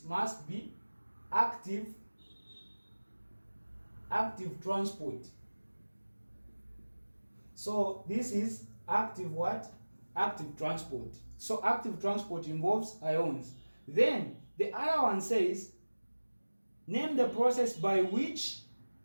must be active transport. So this is active what? Active transport. So active transport involves ions. Then the other one says name the process by which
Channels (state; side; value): inverted; both; correlation -1.00